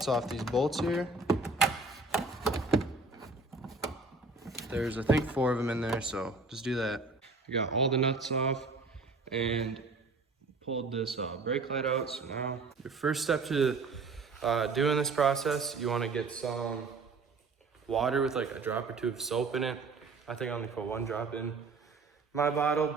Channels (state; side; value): quieter; left; 3.7 dB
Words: off these bolts here. There's, I think, 4 of them in there, so just do that. I got all the nuts off and pulled this brake light out. So now your first step to doing this process, you want to get some water with like a drop or 2 of soap in it. I think I only put 1 drop in my bottle,